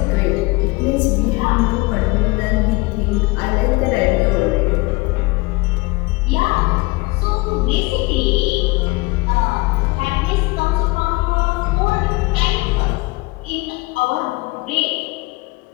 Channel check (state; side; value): quieter; right; 23.6 dB